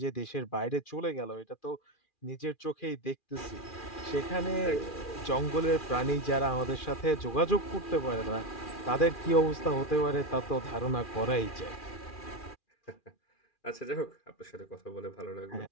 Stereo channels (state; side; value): late; right; 2.4 ms